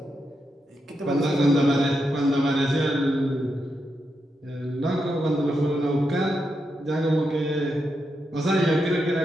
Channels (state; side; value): normal; both; correlation 0.85